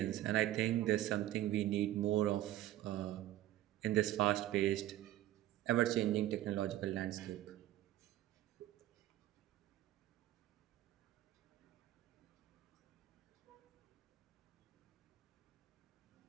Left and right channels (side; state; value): left; quieter; 14.1 dB